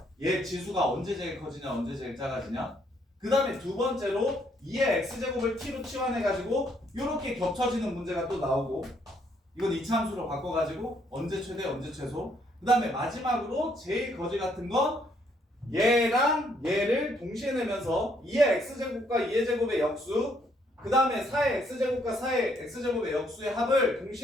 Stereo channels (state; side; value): normal; both; correlation 0.69